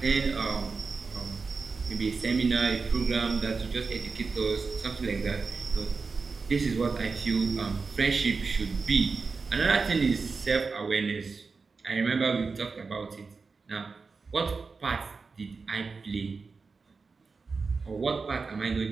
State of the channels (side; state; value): left; quieter; 4.5 dB